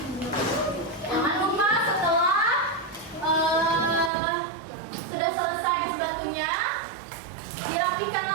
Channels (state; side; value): drops out; left; at 4.1 s